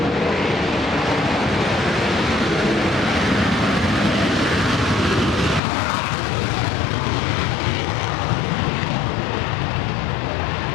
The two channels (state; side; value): drops out; right; at 5.6 s